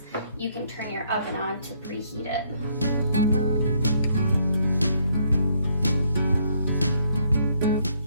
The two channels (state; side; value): inverted; both; correlation -0.69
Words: you can turn your oven on to preheat it.